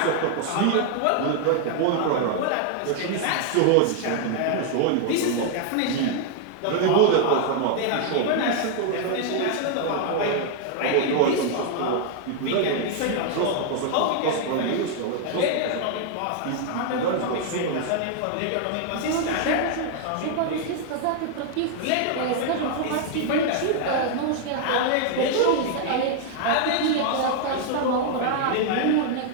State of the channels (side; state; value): both; different; correlation 0.00